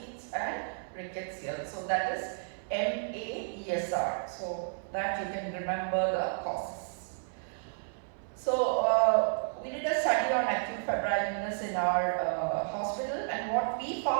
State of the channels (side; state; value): left; silent; 56 dB below the other